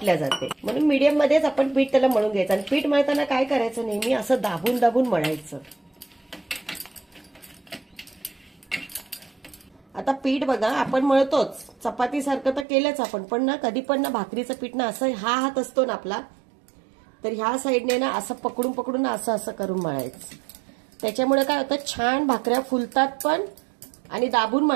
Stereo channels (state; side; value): drops out; left; at 12.7 s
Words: जाते. म्हणून मीडियम मध्येच आपण पीठ त्याला मळून घ्यायचं. आणि पीठ मळताना काय करायचं, नेहमी असं दाबून दाबून मळायचं. आता पीठ बघा आपण मळतोच, चपातीसारखं तर केलंच आपण, पण ना कधी पण ना भाकरीचं पीठ ना असं हा हात असतो ना आपला, तर ह्या साईडने ना असं पकडून पकडून असं असं करून मळायचं. त्याच्यामुळे काय होतं, छान भाकऱ्या फुलतात पण, आणि दाबून